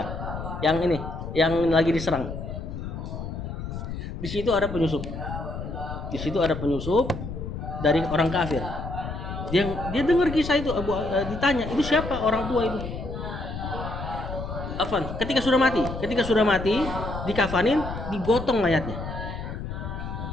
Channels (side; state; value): left; noise; rumble, 7 dB below the sound